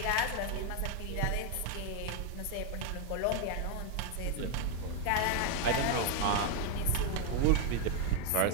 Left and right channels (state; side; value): different; both; correlation 0.00